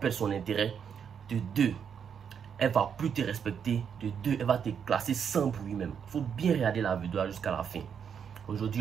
son intérêt. De 2, elle va plus te respecter. De 2, elle va te classer sans bruit même. Il faut bien regarder la vidéo jusqu'à la fin.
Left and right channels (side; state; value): left; quieter; 7.5 dB